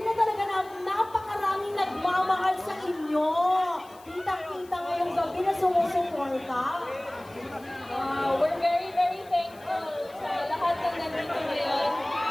na talaga na napakaraming nagmamahal sa inyo? Kita-kita ngayong gabi na sumusuporta. We're very, very thankful sa lahat ng nandito ngayon.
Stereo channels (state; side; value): noise; left; hiss, 25 dB below the sound